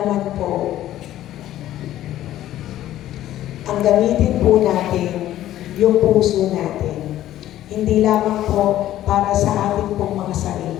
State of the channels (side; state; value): right; quieter; 13.3 dB